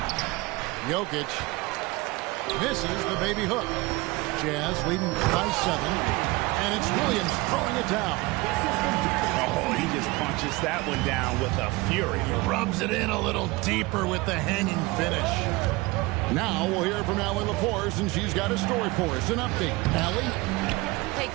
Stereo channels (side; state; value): left; quieter; 22.4 dB